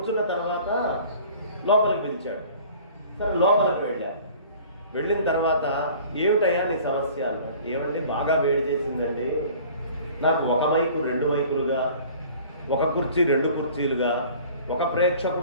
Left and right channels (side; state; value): both; inverted; correlation -0.48